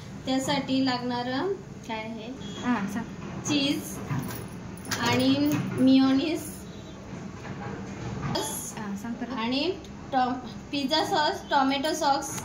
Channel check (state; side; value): identical; both; correlation 1.00